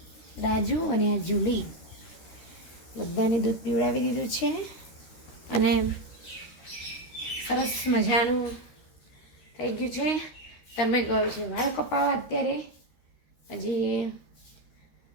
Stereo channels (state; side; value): late; right; 13 ms